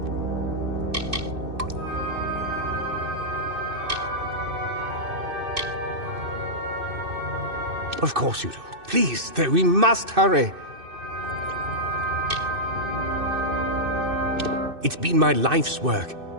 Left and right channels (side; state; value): left; late; 2.6 ms